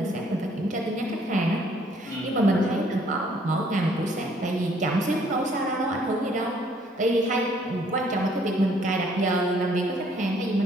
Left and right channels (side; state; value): both; normal; correlation 0.63